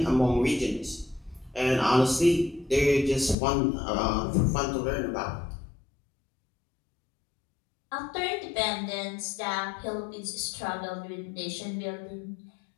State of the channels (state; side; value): drops out; right; at 3.4 s